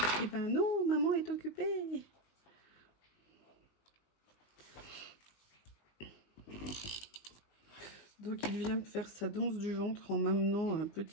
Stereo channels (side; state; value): right; late; 20 ms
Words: !» Eh ben non, maman est occupée. Donc il vient me faire sa danse du ventre en m'amenant